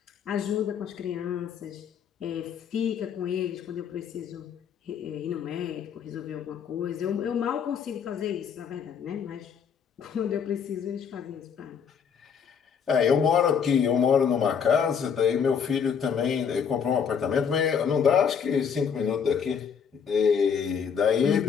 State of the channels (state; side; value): quieter; right; 7.0 dB